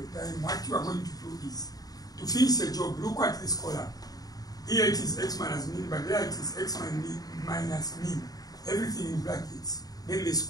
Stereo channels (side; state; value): right; late; 0.18 ms